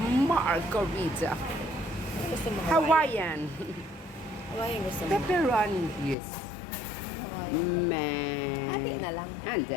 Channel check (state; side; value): drops out; right; at 6.2 s